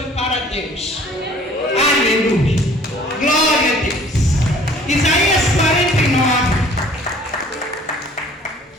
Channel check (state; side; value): normal; both; correlation 0.53